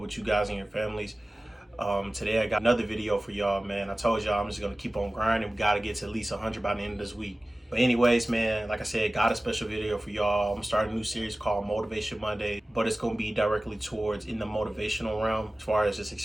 with you guys and your families. Today I got another video for y'all, man. I told y'all I'm just gonna keep on grinding. We gotta get to at least 100 by the end of this week. But anyways, man, like I said, got a special video for y'all. I'm gonna start a new series called Motivation Monday, but it's gonna be directly towards in the motivational realm as far as just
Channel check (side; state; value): both; normal; correlation 0.97